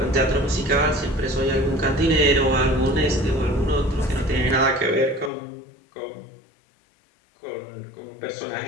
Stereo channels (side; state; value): right; drops out; at 5.3 s